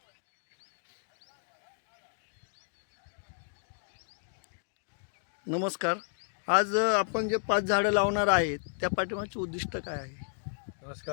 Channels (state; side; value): silent; right; digital silence